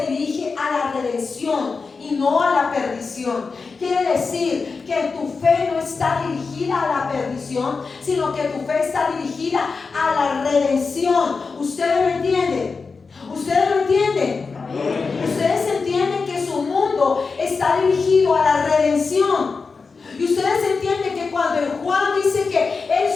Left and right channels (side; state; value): right; quieter; 4.6 dB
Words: dirige a la redención y no a la perdición. Quiere decir que tu fe no está dirigida a la perdición, sino que tu fe está dirigida a la redención. ¿Ustedes lo entienden? ¿Ustedes lo entienden? Ustedes entienden que su mundo está dirigido a la redención. Y ustedes entienden que cuando Juan dice que él